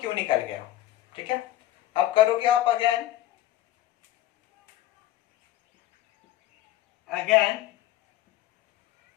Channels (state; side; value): quieter; right; 14.3 dB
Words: निकल गया, ठीक है। अब करोगे आप अगेन